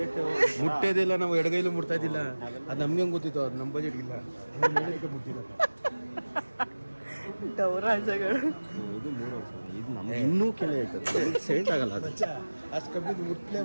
ಮುಟ್ಟೋದಿಲ್ಲ. ನಾವು ಎಡಗೈಲು ಮುಟ್ತಾ ಇದ್ದಿಲ್ಲ. ಅದು ನಮ್ಗೆ ಹೆಂಗೆ ಗೊತ್ತಿತ್ತು? ಅದು ನಮ್ಮ ಬಜೆಟ್ಗಿಲ್ಲ. ಮುಟ್ಟಿಲ್ಲ ಗೌರಾಜಗಳು. ಇದು 3,000. ಇದು ನಮ್ಗೆ ಇನ್ನೂ ಕೆಲ ಹೇಳ್ತದೆ, ಸೆಟ್ ಆಗಲ್ಲ. ಅದು ಅಷ್ಟು ಕಮ್ಮಿ ಮುಟ್ಲೇ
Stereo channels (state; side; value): inverted; both; correlation -1.00